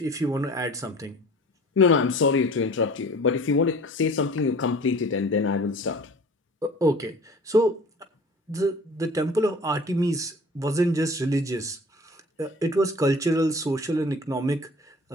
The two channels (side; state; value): both; normal; correlation 0.45